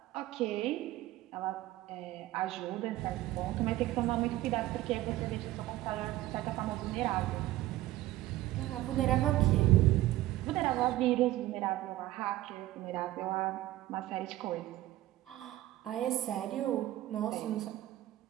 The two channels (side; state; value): left; quieter; 15.7 dB